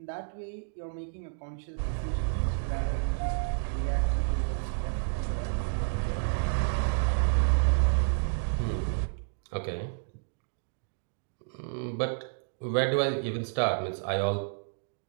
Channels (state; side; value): silent; left; digital silence